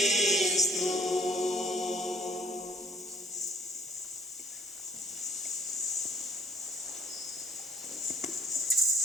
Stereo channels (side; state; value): both; normal; correlation 0.59